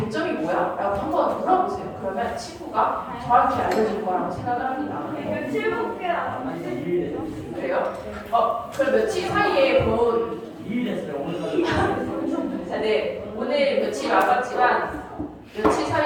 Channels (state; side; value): identical; both; correlation 1.00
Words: 뭐야? 라고 한번 물어보세요. 그러면 친구가 정확히 알려줄 거라고 생각을 합니다. 네. 며칠 볼게요. 그래요? 그럼 며칠 사이에 본 2일 됐어요. 오늘 자, 네. 오늘 며칠 남았지만 며칠